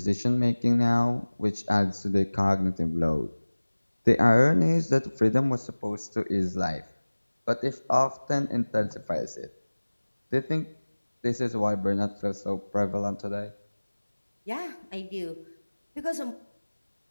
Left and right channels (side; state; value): both; inverted; correlation -1.00